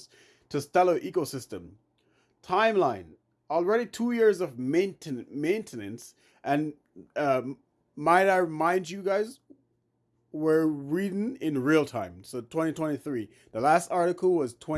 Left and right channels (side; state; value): both; identical; correlation 1.00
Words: to Stellar ecosystem. Timeline: already 2 years of maintenance, and might I remind you guys, we're reading in real time. So 2023. The last article was